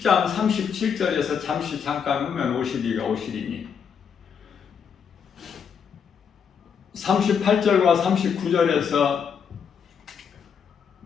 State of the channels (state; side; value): quieter; right; 7.0 dB